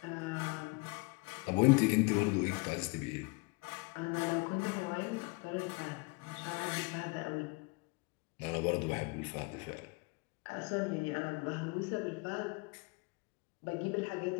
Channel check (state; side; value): quieter; right; 28.3 dB